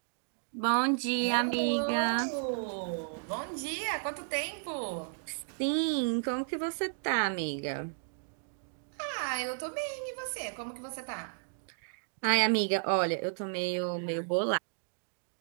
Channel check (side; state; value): left; silent; digital silence